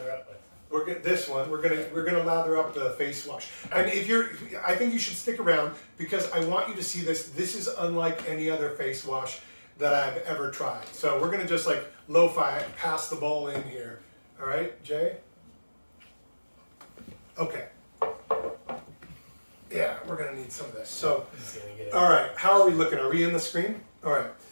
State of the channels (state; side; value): inverted; both; correlation -1.00